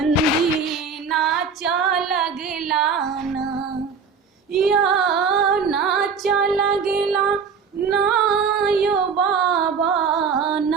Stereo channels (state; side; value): quieter; left; 5.7 dB